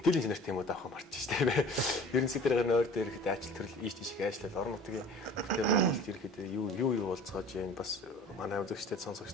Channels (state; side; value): normal; both; correlation 0.45